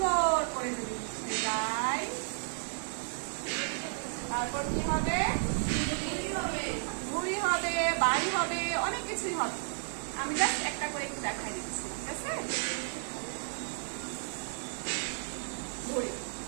করে যদি মুছে যায়, তারপর কি হবে? ভুঁড়ি হবে, বাড়ি হবে, অনেক কিছুই হবে। আমি জাস্ট একটা করে একটু দেখাই দিচ্ছি, ঠিক আছে? ভুঁড়ি।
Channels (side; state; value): left; silent; digital silence